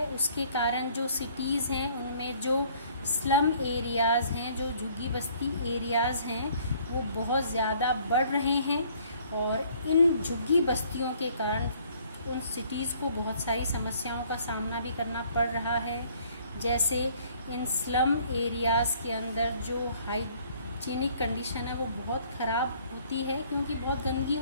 उसके कारण जो सिटीज़ हैं उनमें जो स्लम एरियाज़ हैं, जो झुग्गी बस्ती एरियाज़ हैं वो बहुत ज़्यादा बढ़ रहे हैं, और इन झुग्गी बस्तियों के कारण उन सिटीज़ को बहुत सारी समस्याओं का सामना भी करना पड़ रहा है। जैसे इन स्लम एरियाज़ के अंदर जो हाइजीनिक कंडीशन है वो बहुत ख़राब होती है, क्योंकि बहुत गंदगी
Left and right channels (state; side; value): inverted; both; correlation -0.60